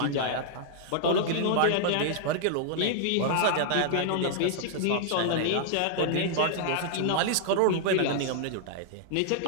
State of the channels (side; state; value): both; different; correlation -0.01